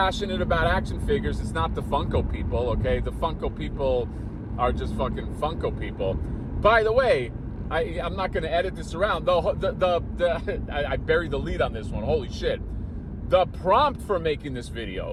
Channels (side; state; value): both; identical; correlation 1.00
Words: about action figures. It's not the Funko people, okay? The Funko people are just fucking Funko people. By the way, I'm not going to edit this around. I buried the lead on this one. Holy shit. The prompt for making this